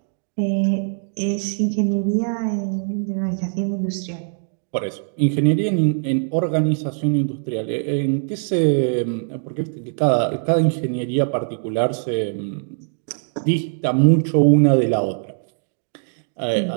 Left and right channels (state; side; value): silent; left; digital silence